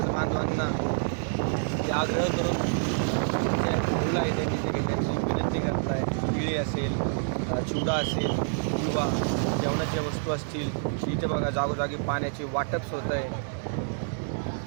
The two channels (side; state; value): left; silent; 60 dB below the other